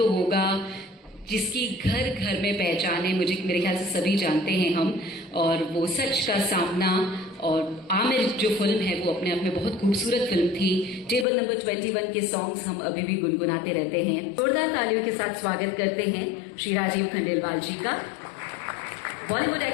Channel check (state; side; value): drops out; right; at 11.2 s